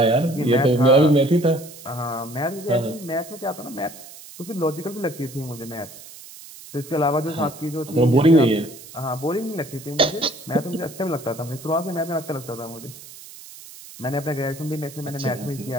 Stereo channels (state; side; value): noise; right; hiss, 17 dB below the sound